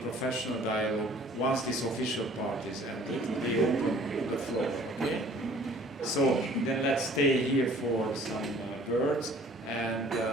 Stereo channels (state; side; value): normal; both; correlation 0.53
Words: professional dialogue once this official part is ended. They open with the floor. Okay? So then let's stay here for some words. And